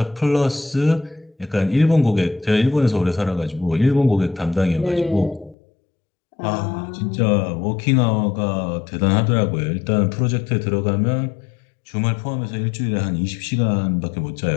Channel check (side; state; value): right; drops out; at 5.6 s